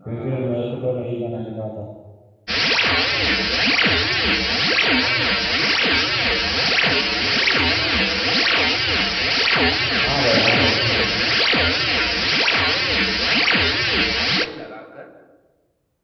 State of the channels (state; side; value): identical; both; correlation 1.00